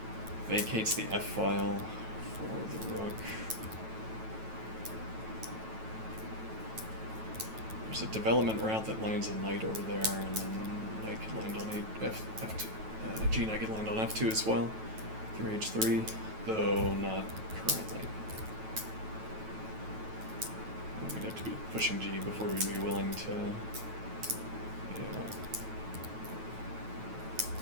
Vacates the f file for the rook. There's a development route that lands a knight over there, and then knight could land on f2. G knight could land on f2 as well, through h3, though not currently. We'd have to be pushing g before we'd be willing to. Yeah.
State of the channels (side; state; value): left; late; 9.2 ms